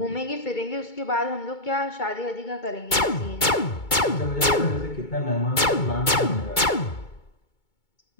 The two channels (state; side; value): late; right; 2.2 ms